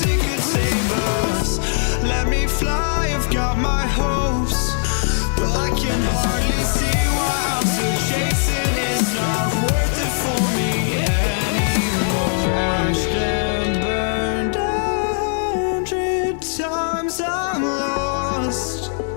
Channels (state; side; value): silent; right; digital silence